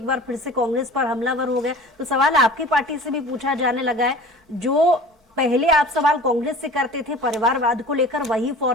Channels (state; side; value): normal; both; correlation 0.42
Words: बार फिर से कांग्रेस पर हमलावर हो गए, तो सवाल आपकी पार्टी से भी पूछा जाने लगा है। जो पहले आप सवाल कांग्रेस से करते थे परिवारवाद को लेकर, वही